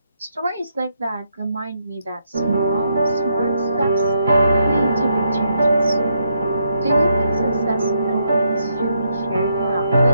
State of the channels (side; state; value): both; inverted; correlation -0.79